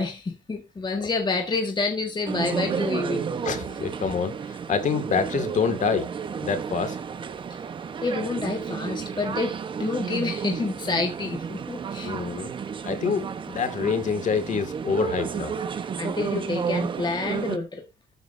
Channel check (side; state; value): both; normal; correlation 0.47